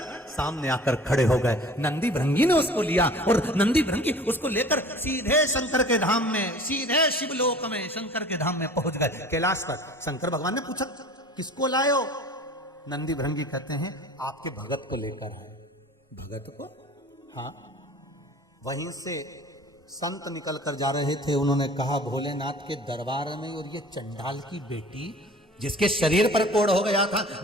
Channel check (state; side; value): normal; both; correlation 0.45